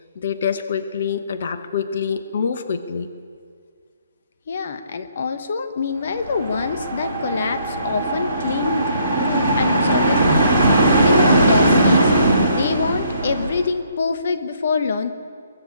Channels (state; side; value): inverted; both; correlation -0.66